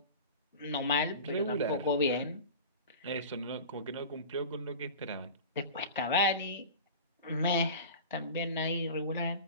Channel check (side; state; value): both; inverted; correlation -0.34